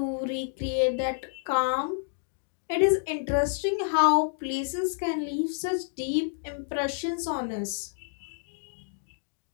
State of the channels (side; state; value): right; silent; digital silence